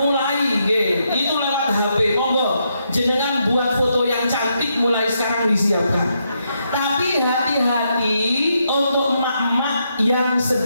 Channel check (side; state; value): both; inverted; correlation -0.79